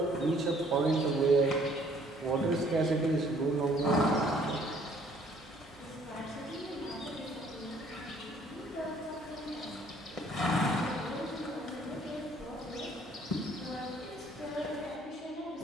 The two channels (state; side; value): noise; right; hum, 28 dB below the sound